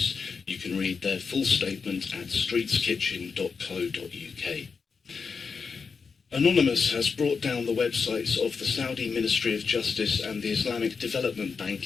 You can read their full statement at streetskitchen.co.uk. Anonymous has brought down the websites of the Saudi Ministry of Justice and the Islamic Development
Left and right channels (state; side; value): quieter; right; 5.3 dB